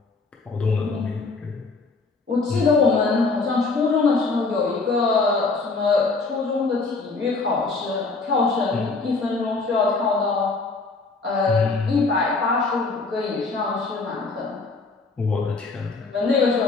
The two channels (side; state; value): right; quieter; 3.9 dB